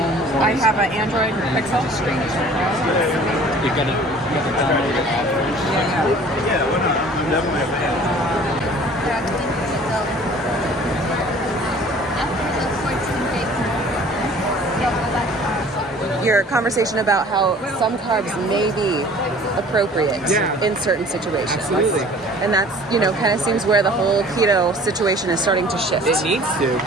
Or I have an Android Pixel. You gotta download the app Your conversation about how some carbs may be appropriate in certain situations. Absolutely. And that's, kind of seems where the whole keto situation is starting to shift. It needs to,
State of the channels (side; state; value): both; normal; correlation 0.49